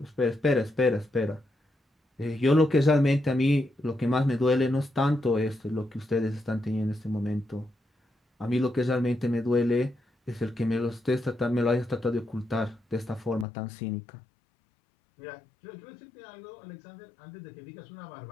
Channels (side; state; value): right; drops out; at 13.5 s